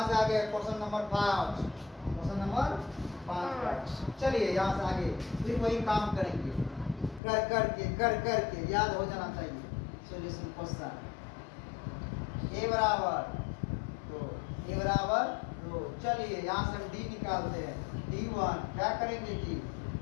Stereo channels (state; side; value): drops out; right; at 7.2 s